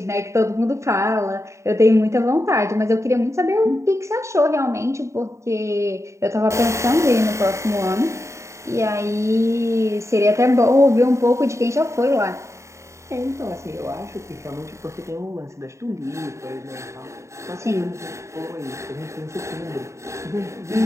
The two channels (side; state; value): left; late; 0.14 ms